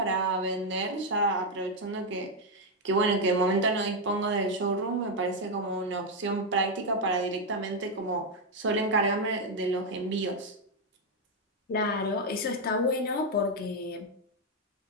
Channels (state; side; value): normal; both; correlation 0.02